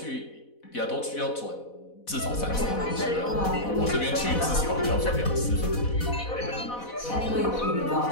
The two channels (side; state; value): right; late; 4.1 ms